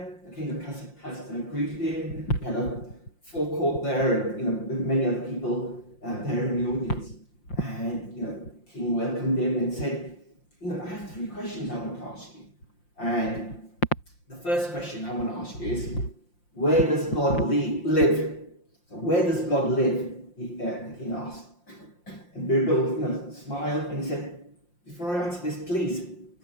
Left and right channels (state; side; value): late; right; 5.7 ms